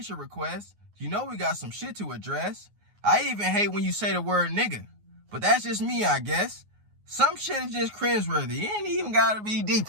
request. You know we got some shit to address. I even hate when you say the word nigga. But that's just me, I guess. Some shit is just cringeworthy. It ain't even gotta be deep,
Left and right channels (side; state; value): left; late; 9.5 ms